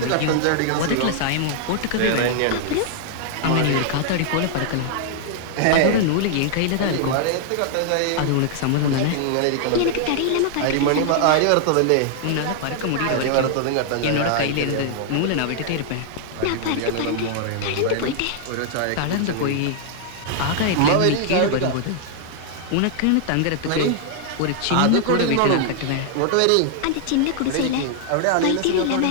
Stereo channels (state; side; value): different; both; correlation -0.01